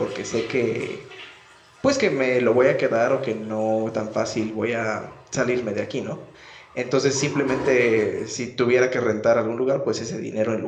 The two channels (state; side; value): identical; both; correlation 1.00